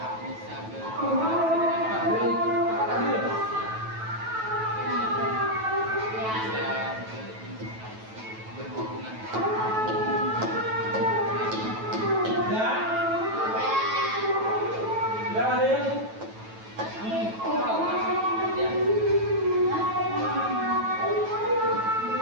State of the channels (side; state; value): left; late; 9.2 ms